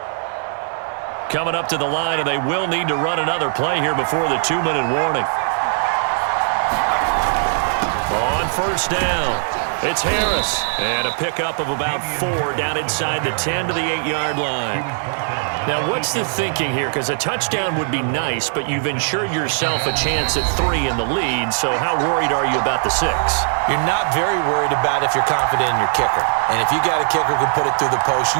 Coming up to the line, and they will need to run another play here before the 2-minute warning. On first down, it's Harris. And a pickup of about 4 down inside the 10 to the 8-yard line. Now, what's the thinking here? Because a touchdown would be nice, but you've ensured yourself a chance at 3 in the lead, so how worried are you about the 6? You're not very worried about if you're confident in your kicker. And if you got a kicker who can put it through the post,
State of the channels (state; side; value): silent; left; 56 dB below the other